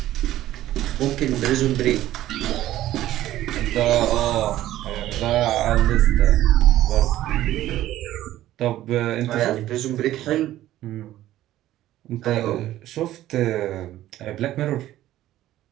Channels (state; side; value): quieter; left; 14.1 dB